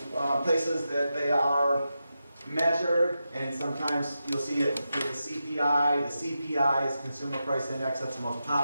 places that they are measured, and sometimes you'll see it with the CPI. The CPI is Consumer Price Index. That's the most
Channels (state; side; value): inverted; both; correlation -0.89